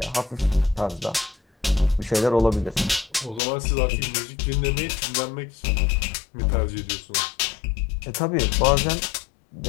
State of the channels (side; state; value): right; drops out; at 3.4 s